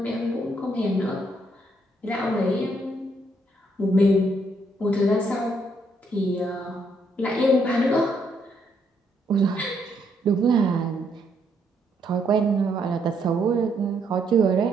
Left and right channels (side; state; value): both; normal; correlation 0.73